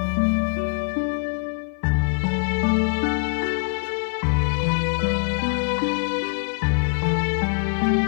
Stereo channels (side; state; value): right; silent; 55 dB below the other